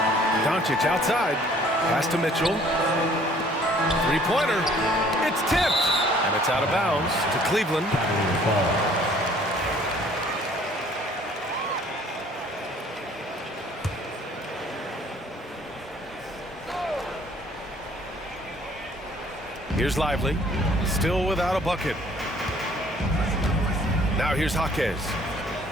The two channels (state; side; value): normal; both; correlation 0.57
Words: Doncic outside. Pass to Mitchell. Three-pointer. It's tipped. And it's out of bounds to Cleveland. Cavalier ball. Here's Lively, still without a bucket. Now here's Jaquez.